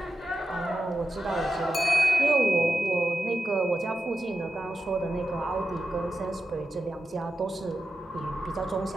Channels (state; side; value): normal; both; correlation 0.89